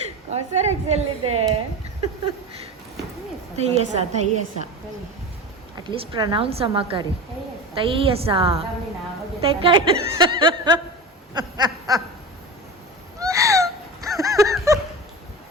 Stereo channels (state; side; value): normal; both; correlation 0.29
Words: ಕಾಸರೆಕ್ಸ್ ಎಲ್ಲಿದೆ? ತೈಯಸ ಅಟ್ಲೀಸ್ಟ್ ಪ್ರನೌನ್ಸ್ ಅಮ್ಮಕಾರಿ. ತೈಯಸ